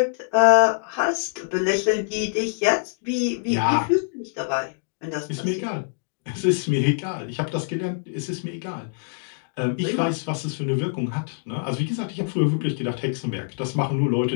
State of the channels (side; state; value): right; silent; digital silence